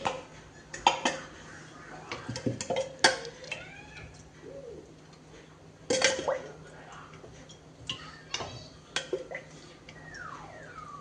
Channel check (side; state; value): both; identical; correlation 1.00